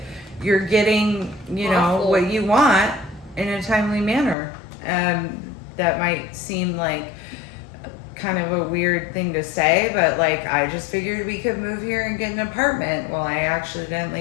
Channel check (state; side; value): drops out; right; at 4.4 s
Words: you're getting, you know, Awful. what you want in a timely manner. That might seem like kind of a weird thing to say, but like I just figured we could move here and get an apartment. Well, I